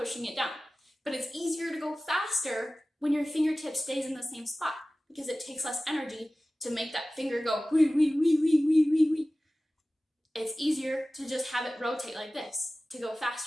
it down, but it's easier to go faster when your fingertip stays in the same spot because it takes less energy to make that finger go wee, wee, wee, wee, wee, wee, wee. It's easier to just have it rotate like this to go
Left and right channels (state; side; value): normal; both; correlation 0.96